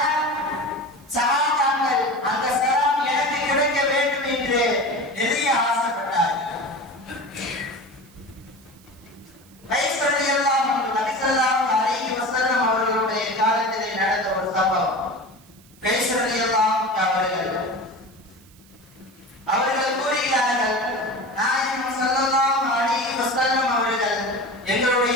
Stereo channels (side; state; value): right; noise; hiss, 27 dB below the sound